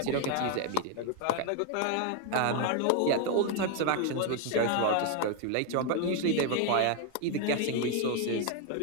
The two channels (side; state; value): both; different; correlation 0.01